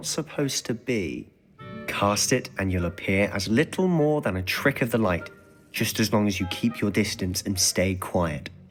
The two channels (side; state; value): both; identical; correlation 1.00